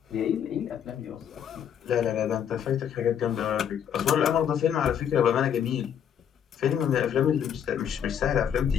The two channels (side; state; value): right; quieter; 8.8 dB